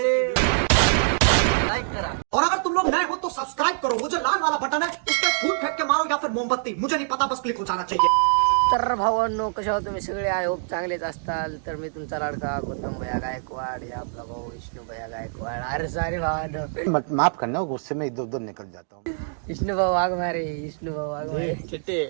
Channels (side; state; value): left; silent; digital silence